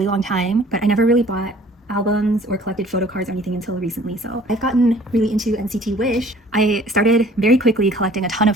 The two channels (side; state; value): both; normal; correlation 0.53